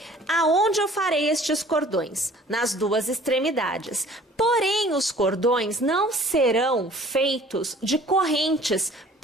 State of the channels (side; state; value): both; normal; correlation 0.51